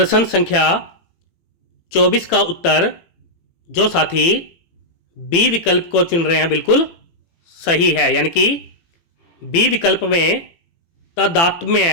संख्या 24 का उत्तर जो साथी बी विकल्प को चुन रहे हैं बिल्कुल सही है, यानी कि बी विकल्प में तदात्म्य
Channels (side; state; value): right; late; 18 ms